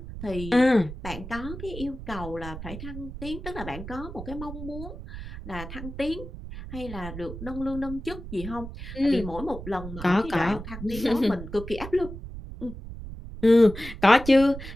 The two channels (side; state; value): right; noise; rumble, 10 dB below the sound